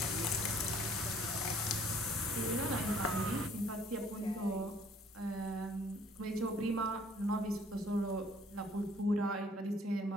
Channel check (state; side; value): normal; both; correlation 0.58